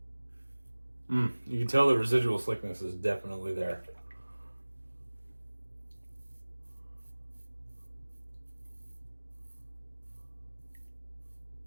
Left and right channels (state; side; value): inverted; both; correlation -1.00